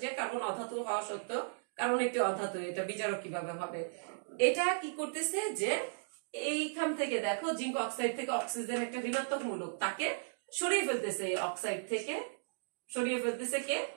যে কার্বন অধাতু হওয়া সত্ত্বেও কার্বন একটি অধাতু, এটা বিজারক কিভাবে হবে? এটা কি করতেছে? যে এইখান থেকে দেখো, জিঙ্ক অক্সাইড থেকে অক্সিজেন একটা ঋণাত্মক মূলক, তাকে সরিয়ে ফেলতেছে। এই অক্সাইড থেকে সরিয়ে ফেলতেছে কে?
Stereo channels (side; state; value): left; silent; digital silence